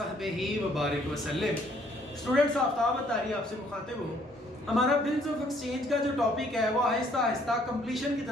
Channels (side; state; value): both; normal; correlation 0.64